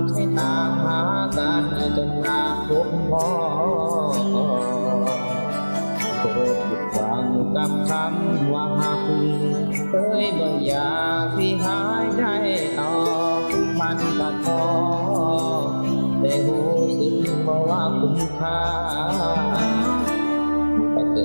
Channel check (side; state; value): both; inverted; correlation -1.00